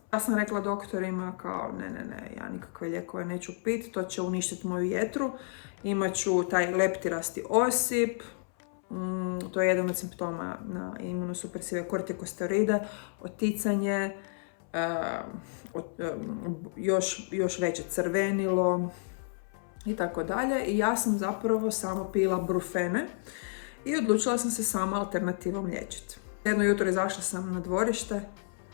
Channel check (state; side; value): silent; right; 57 dB below the other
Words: Ja sam rekla doktorima kao ne, ja nikakve lijekove neću piti, to će uništiti moju jetru, imat ću taj leptirasti osip, to je jedan od simptoma na imunosupresive kortikosteroide, oticanje, još veće crvenilo i tako dalje. I ja sam zapravo samo pila brufene i odlučila sam se sama alternativom liječiti. Jedno jutro izašla sam na dvorište,